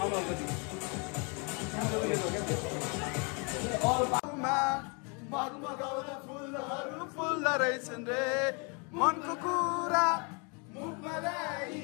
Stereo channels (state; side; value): quieter; right; 34.0 dB